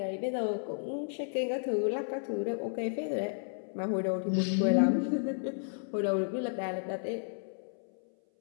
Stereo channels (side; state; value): right; silent; 56 dB below the other